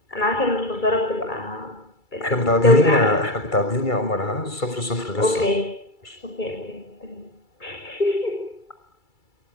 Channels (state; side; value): late; right; 2.3 ms